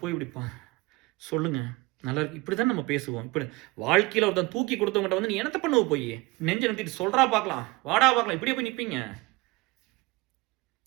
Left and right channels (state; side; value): quieter; left; 23.1 dB